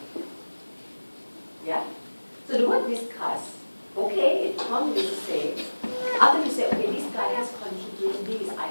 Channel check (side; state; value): both; inverted; correlation -1.00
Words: Yeah? So the word discuss, okay, it comes to say, after you say, okay, this guy has contributed these